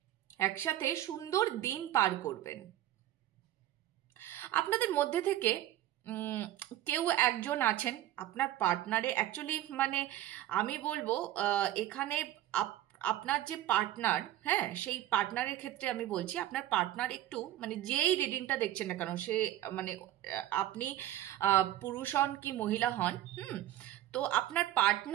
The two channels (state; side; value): quieter; left; 13.3 dB